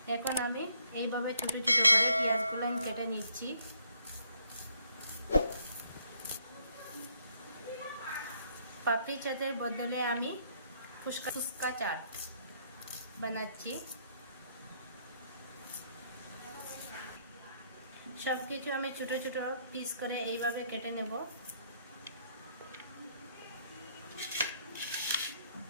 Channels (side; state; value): both; inverted; correlation -0.70